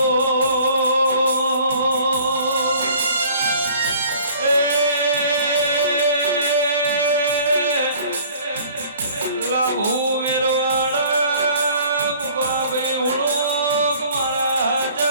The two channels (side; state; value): both; inverted; correlation -0.51